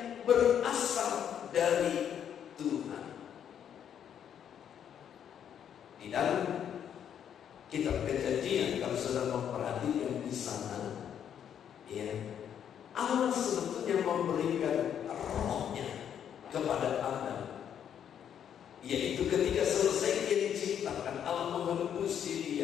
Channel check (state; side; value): quieter; right; 9.0 dB